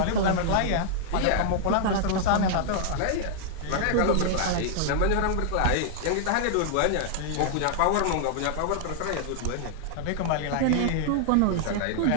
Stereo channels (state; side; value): different; both; correlation -0.01